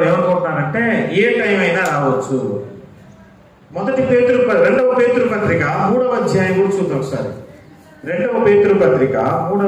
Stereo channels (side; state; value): both; identical; correlation 1.00